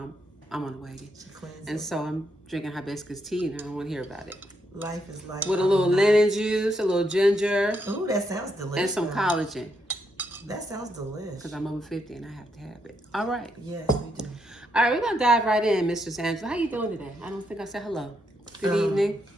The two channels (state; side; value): normal; both; correlation 0.78